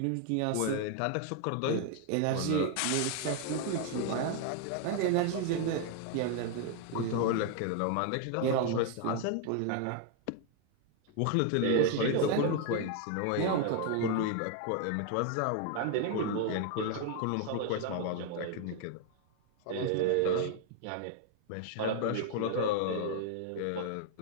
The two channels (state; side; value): different; both; correlation 0.00